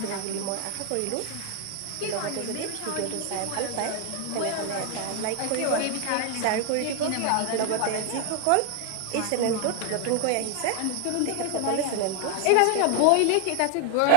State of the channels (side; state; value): both; different; correlation 0.00